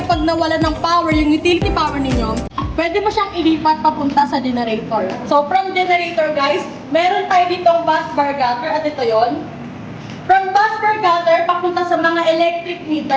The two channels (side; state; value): both; identical; correlation 1.00